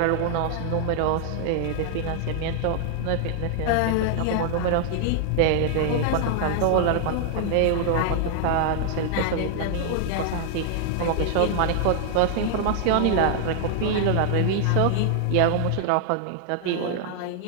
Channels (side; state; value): both; different; correlation 0.00